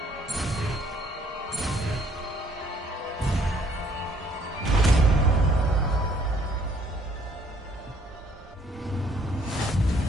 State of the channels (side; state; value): both; normal; correlation 0.63